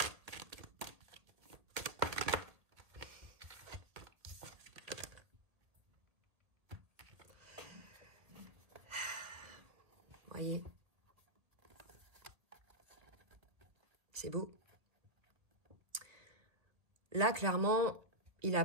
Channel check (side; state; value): left; late; 1.8 ms